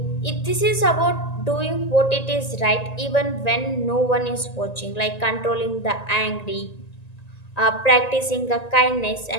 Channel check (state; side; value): late; right; 1.9 ms